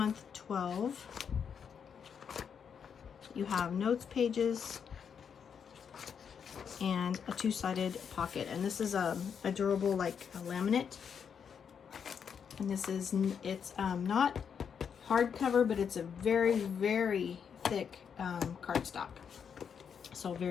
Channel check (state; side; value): quieter; right; 7.2 dB